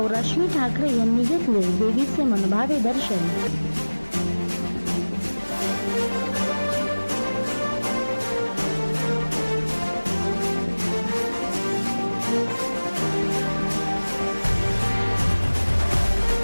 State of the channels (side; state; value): both; inverted; correlation -1.00